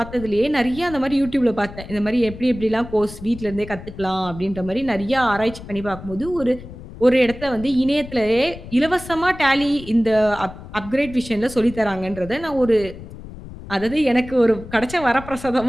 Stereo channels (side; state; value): left; noise; rumble, 14 dB below the sound